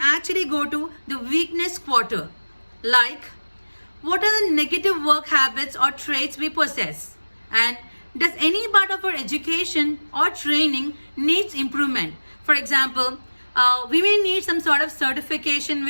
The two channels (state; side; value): inverted; both; correlation -1.00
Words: go to the weakness quarter, like what are the negative work habits or traits we possess, and does any part of our education or training needs improvement? For example, we may need some sort of certification